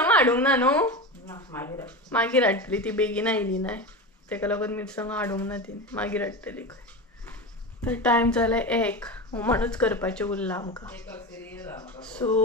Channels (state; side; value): normal; both; correlation 0.23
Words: हाडूंक ना न्हू? मागीर हाडटली ती बेगीन आयली न्हय तेका लागून मिरसांगो हाडूंक ना तिणें. मागीर हाडटली खंय. तर टायम जाले 1 हुमणूच करपाचें उरलां आमकां.